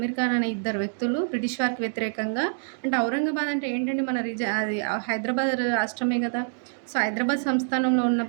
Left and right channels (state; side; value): silent; left; digital silence